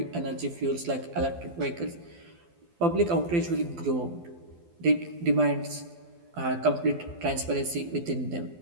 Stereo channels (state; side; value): late; left; 12 ms